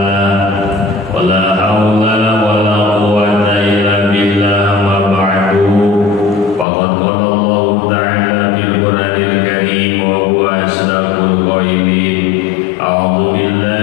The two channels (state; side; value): drops out; right; at 6.7 s